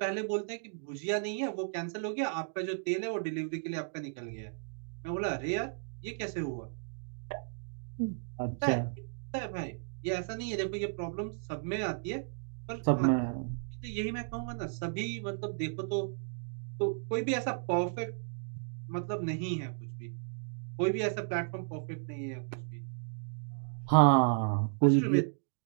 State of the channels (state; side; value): silent; left; digital silence